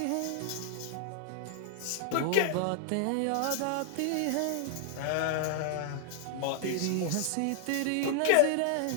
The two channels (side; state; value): both; different; correlation 0.00